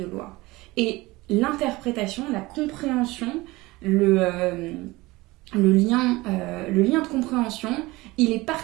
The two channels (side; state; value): left; quieter; 20.9 dB